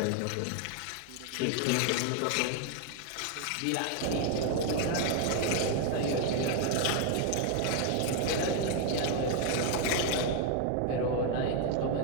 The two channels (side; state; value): both; different; correlation 0.01